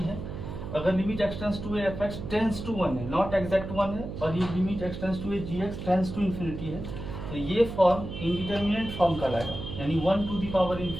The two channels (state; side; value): noise; right; hum, 8 dB below the sound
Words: है। अगर limit x tends to f x tends to 1 है, नॉट एग्जैक्ट 1 है, और ये limit x tends to g x tends to infinity है, तो ये फॉर्म इनडिटर्मिनेंट फॉर्म कहलाएगा, यानी 1 टू द पावर